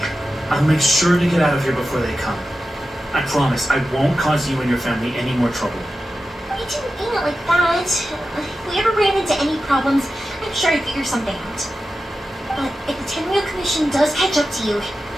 I'll make sure to get out of here before they come. I promise I won't cause you and your family any more trouble. I didn't mean it like that. If we ever ran into any problems, I'm sure I'd figure something out. But if the Tenryou Commission does catch up to you,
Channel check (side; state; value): both; normal; correlation 0.92